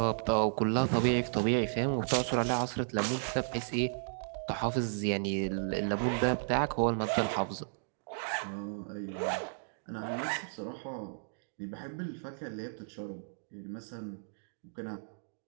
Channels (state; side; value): silent; left; digital silence